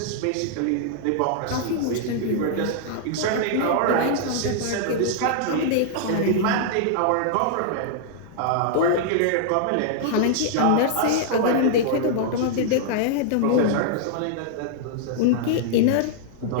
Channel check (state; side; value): different; both; correlation -0.01